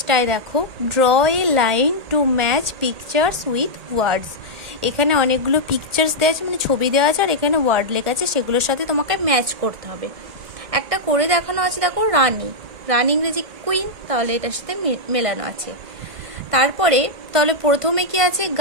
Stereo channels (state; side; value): late; left; 1.6 ms